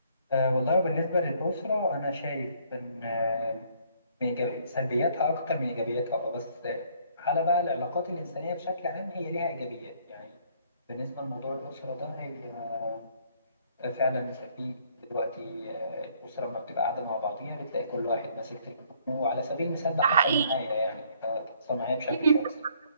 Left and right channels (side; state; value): both; inverted; correlation -0.64